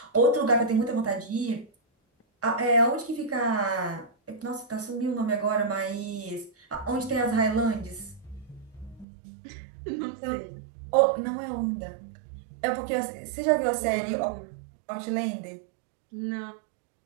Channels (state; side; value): drops out; left; at 9.1 s